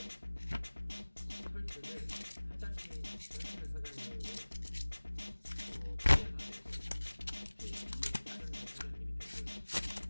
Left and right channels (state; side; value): inverted; both; correlation -1.00